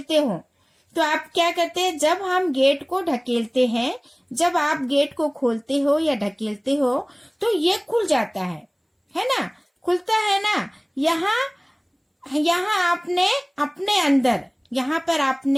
हो, तो आप क्या करते हैं, जब हम गेट को ढकेलते हैं, जब आप गेट को खोलते हो या ढकेलते हो तो ये खुल जाता है ना, खुलता है ना। यहाँ आपने अपने अंदर, यहाँ पर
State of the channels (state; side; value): identical; both; correlation 1.00